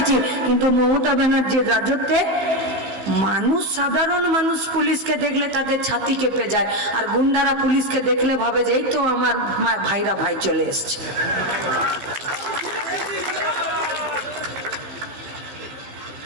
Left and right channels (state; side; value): late; left; 15 ms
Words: কিন্তু মমতা ব্যানার্জির রাজত্বে মানুষ, সাধারণ মানুষ পুলিশকে দেখলে তাদের ছাতি কেঁপে যায়, আর গুন্ডারা পুলিশকে দেখলে ভাবে যে এই তো আমার ভাইরা ভাই চলে এসছে।